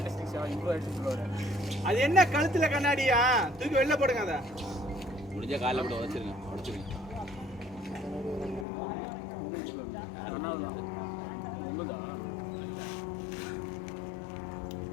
அது என்ன கழுத்துல கண்ணாடியா தூக்கி வெளில போடுங்க அத முடிஞ்ச கால்ல போட்டு உடைச்சிருங்க உங்களுதா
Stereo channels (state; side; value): drops out; right; at 8.7 s